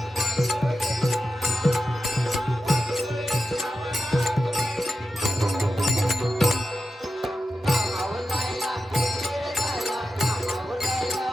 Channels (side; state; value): both; normal; correlation 0.90